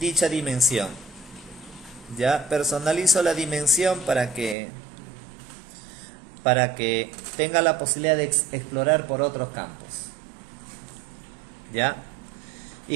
dimensión. Ya personalizo la dimensión para que tenga la posibilidad de explorar por otros campos. ¿Ya?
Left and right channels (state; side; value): drops out; left; at 4.5 s